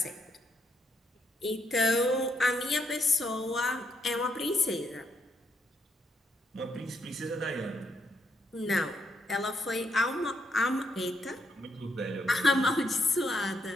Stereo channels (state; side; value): normal; both; correlation 0.77